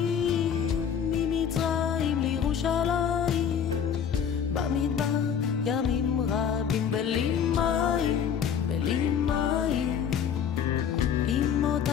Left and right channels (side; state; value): right; quieter; 7.9 dB